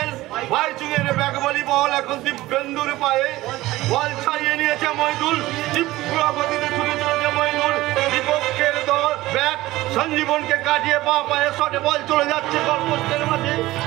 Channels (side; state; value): left; quieter; 17.6 dB